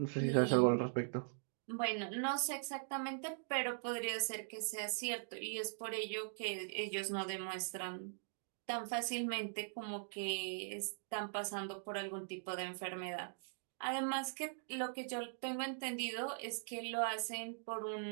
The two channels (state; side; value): silent; left; digital silence